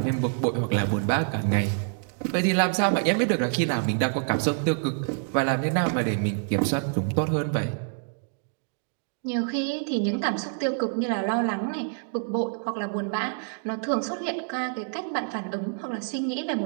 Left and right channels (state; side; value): silent; left; 60 dB below the other